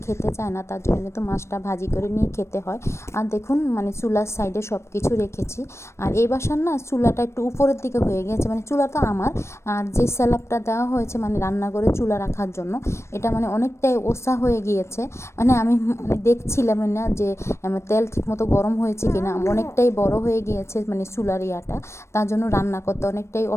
খেতে চায় না, তার জন্য কিন্তু মাছটা ভাজি করে নিয়ে খেতে হয়। আর দেখুন মানে চুলার সাইডে সব কিছু রেখেছি। আর এই বাসার না চুলাটা একটু উপরের দিকে হয়ে গেছে, মানে চুলা তো আমার, আর যে স্ল্যাবটা দেওয়া হয়েছে মানে রান্না করে চুলা রাখার জন্য, এটা মানে অনেকটাই ওসা হয়ে গিয়েছে। মানে আমি দেখছিলাম না যে তেল ঠিকমতো গরম হয়েছে কিনা, অনেকটাই বড় হয়ে গিয়েছে মানে চুলার ইয়াটা, তার জন্য রান্না করতে অনেকটাই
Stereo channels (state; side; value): late; right; 0.13 ms